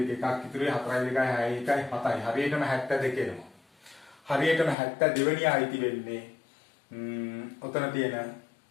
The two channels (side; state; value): right; drops out; at 4.8 s